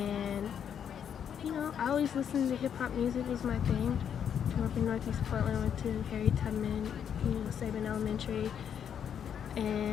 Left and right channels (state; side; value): quieter; right; 8.4 dB